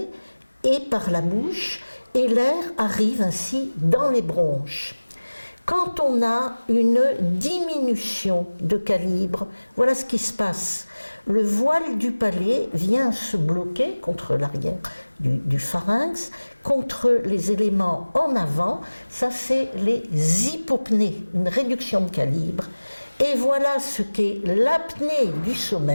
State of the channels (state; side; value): inverted; both; correlation -1.00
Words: et par la bouche, et l'air arrive ainsi dans les bronches. Quand on a une diminution de calibre, voilà ce qui se passe. Le voile du palais vient se bloquer contre l'arrière du pharynx, contre les éléments en avant, ça c'est les hypopnées, une réduction de calibre. Et voilà ce qu'est l'apnée du